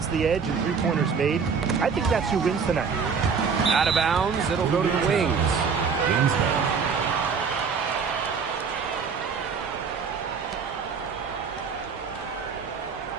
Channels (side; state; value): left; quieter; 5.8 dB